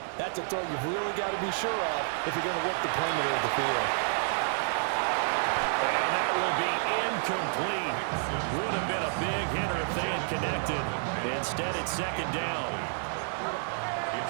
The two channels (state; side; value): silent; left; digital silence